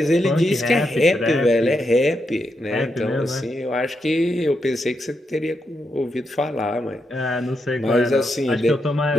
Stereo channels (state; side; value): normal; both; correlation 0.83